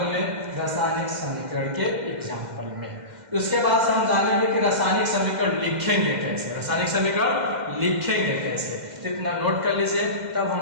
में, रासायनिक समीकरण के एग्जाम्पल में। उसके बाद से हम जानेंगे कि रासायनिक समीकरण लिखेंगे कैसे, रासायनिक समीकरण लिखेंगे कैसे। तो इतना नोट कर लीजिए, तब हम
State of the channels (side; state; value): left; late; 2.1 ms